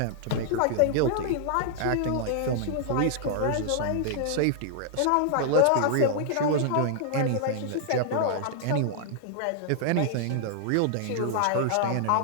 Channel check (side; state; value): both; different; correlation -0.01